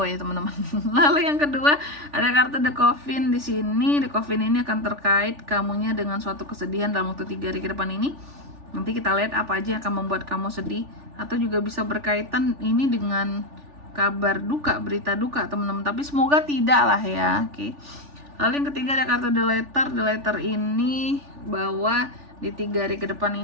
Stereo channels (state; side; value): late; left; 3.4 ms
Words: ya teman-teman. Lalu yang kedua ada kartu The Coffin di sini. The Coffin ini akan terkait kamunya dengan suatu kesedihan dalam waktu 3 hari ke depan ini. Nanti kita lihat apa aja yang akan membuat kamu sedih, atau juga bisa berkaitan ini dengan kabar duka, berita duka teman-teman. Tapi semoga tidak lah ya. Oke. Lalu yang ketiga ada kartu The Letter. The Letter ini bahwa di 3 hari ke depan